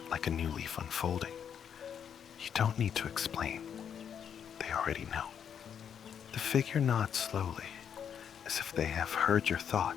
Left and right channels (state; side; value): quieter; right; 8.1 dB